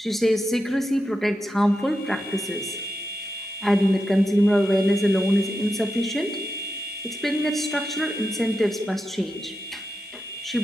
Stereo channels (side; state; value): both; normal; correlation 0.88